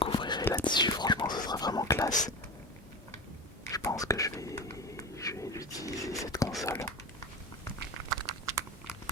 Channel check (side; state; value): both; normal; correlation 0.27